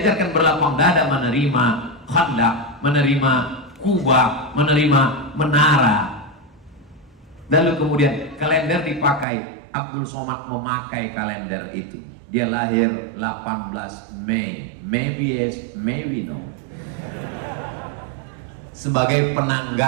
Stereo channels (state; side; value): drops out; left; at 9.2 s